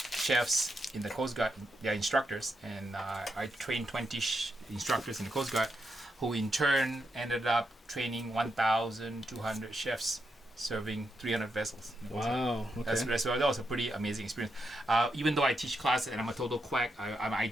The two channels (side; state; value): both; normal; correlation 0.83